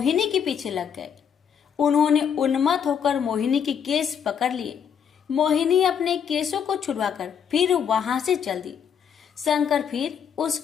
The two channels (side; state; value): right; quieter; 7.7 dB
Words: के पीछे लग गए। उन्होंने उन्मत्त होकर मोहिनी के केस पकड़ लिए। मोहिनी अपने केसों को छुड़वाकर फिर वहां से चल दी। शंकर फिर